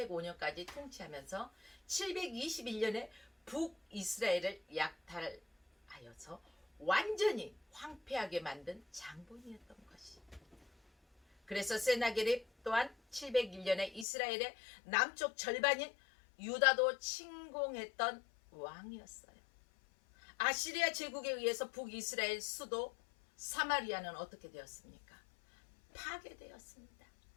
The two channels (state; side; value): drops out; right; at 14.1 s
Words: 통치하면서 721년에 북이스라엘을 약탈하여서 완전히 황폐하게 만든 장본이었던 것이. 그래서 세나게립 또한 701년에 이스라엘의 남쪽 절반인 유다도 침공했던 왕이었어요. 아시리아 제국에 의해서 북이스라엘 수도 사마리아는 어떻게 되었습니까? 파괴되었습니다.